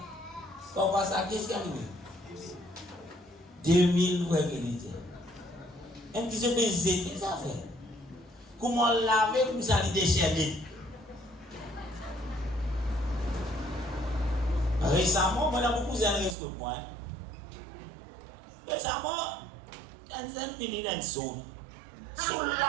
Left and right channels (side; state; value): left; drops out; at 16.4 s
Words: Quand on passe la caisse, qu'est-ce qu'il y a? 2000 fois qu'il était. Un petit peu zéter ça fait. Comment laver comme ça, il déchaîne. Récemment, moi, j'ai beaucoup de risques pour moi. Récemment, j'ai fini dans le son. Sur